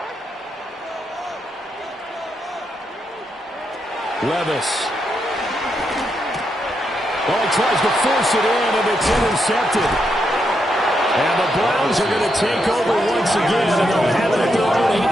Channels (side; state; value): both; normal; correlation 0.82